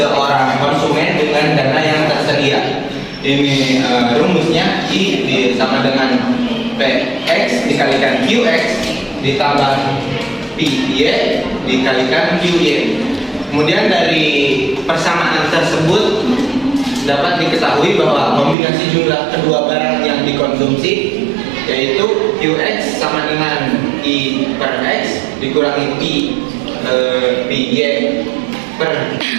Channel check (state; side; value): drops out; left; at 18.6 s